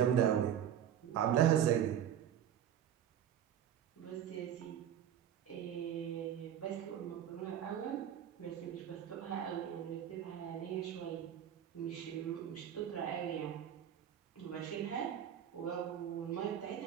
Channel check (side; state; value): left; quieter; 9.9 dB